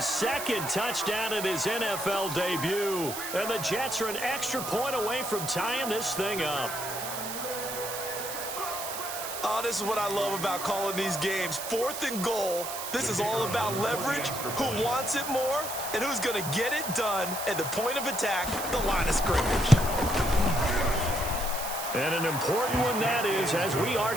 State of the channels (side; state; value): right; noise; hiss, 6 dB below the sound